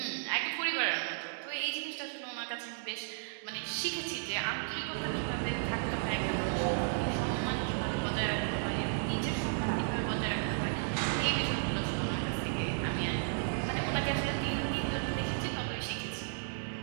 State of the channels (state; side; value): silent; left; digital silence